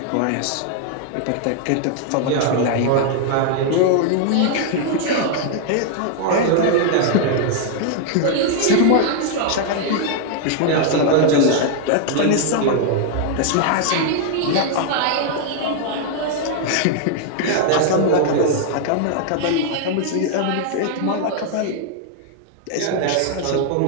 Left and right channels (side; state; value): both; different; correlation 0.00